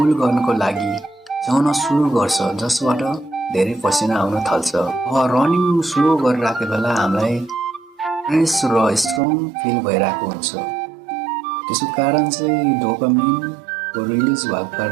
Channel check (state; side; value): drops out; left; at 9.2 s